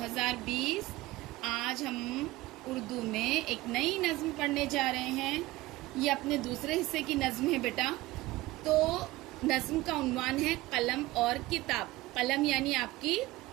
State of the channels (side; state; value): left; quieter; 18.8 dB